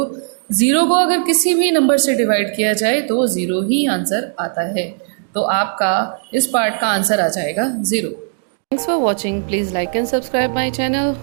0 को अगर किसी भी नंबर से डिवाइड किया जाए तो 0 ही आंसर आता है। तो आपका इस पार्ट का आंसर आ जाएगा 0। Thanks for watching. Please like and subscribe my channel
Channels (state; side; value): silent; left; digital silence